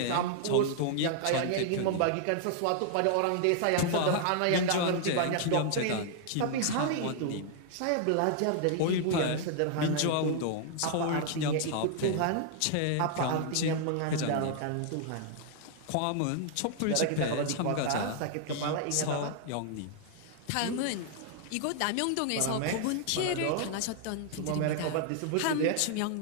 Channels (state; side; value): different; both; correlation 0.00